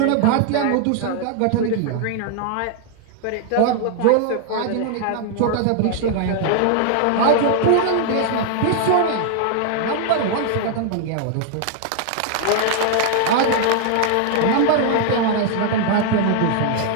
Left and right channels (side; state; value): both; different; correlation 0.00